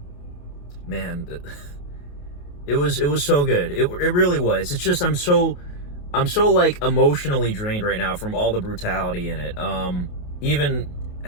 Man, it was so good. It really was. It's just I'm so like emotionally drained right now from all the brutality in it. Even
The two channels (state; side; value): late; right; 28 ms